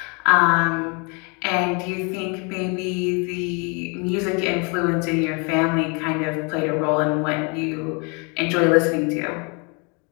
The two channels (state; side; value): quieter; right; 33.1 dB